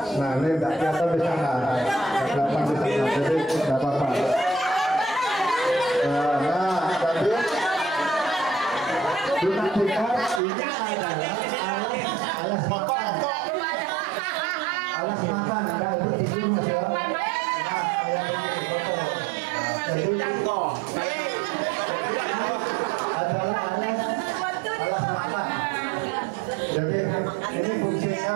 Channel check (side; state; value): left; drops out; at 10.4 s